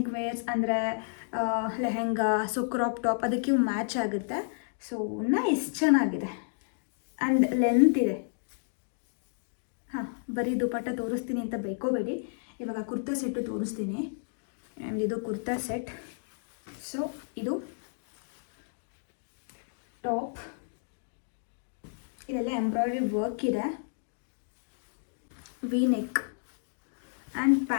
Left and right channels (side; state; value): right; silent; digital silence